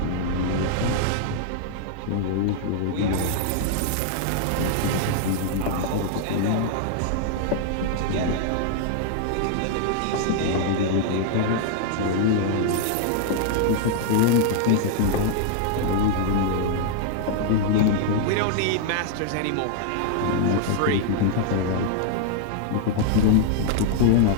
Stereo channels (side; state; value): both; different; correlation 0.00